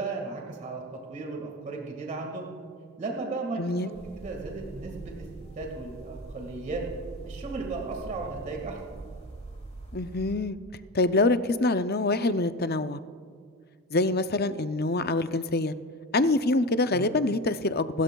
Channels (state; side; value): normal; both; correlation 0.26